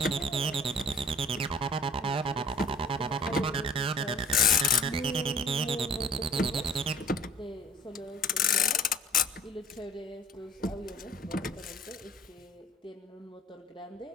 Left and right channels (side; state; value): both; normal; correlation 0.50